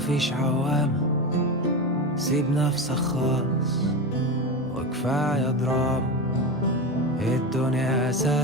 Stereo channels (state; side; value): normal; both; correlation 0.20